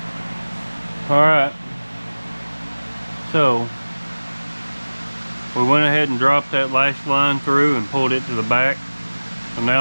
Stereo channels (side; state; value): both; inverted; correlation -1.00